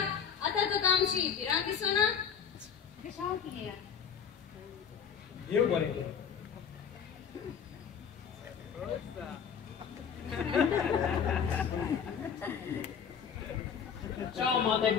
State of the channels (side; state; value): right; quieter; 7.3 dB